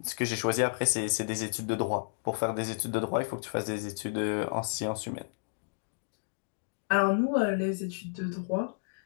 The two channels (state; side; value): silent; right; digital silence